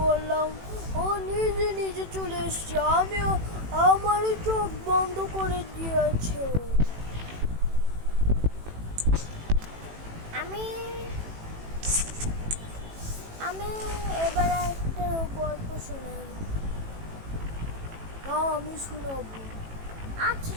ও নিজে নিজে চলে এসছে, আমিও আমারই চোখ বন্ধ করে দিয়েছে। আমি আমি এবার একটা গল্প শোনাই। না আমি শোনাবো। আচ্ছা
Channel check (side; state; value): left; late; 18 ms